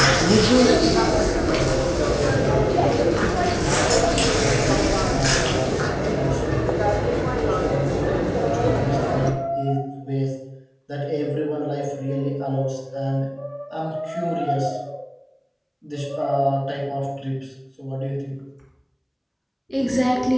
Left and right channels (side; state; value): both; identical; correlation 1.00